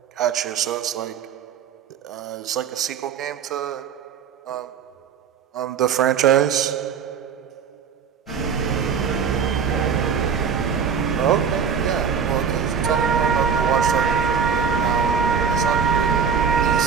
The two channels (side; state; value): left; quieter; 6.7 dB